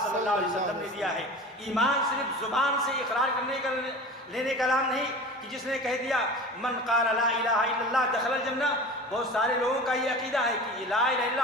صلی اللہ علیہ وسلم نے دیا ہے۔ ایمان صرف زبان سے اقرار کرنے کا لینے کا نام نہیں کہ جس نے کہہ دیا من قال لا الہ الا اللہ دخل الجنہ۔ بہت سارے لوگوں کا یہ عقیدہ ہے کہ لا الہ الا اللہ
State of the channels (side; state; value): both; normal; correlation 0.35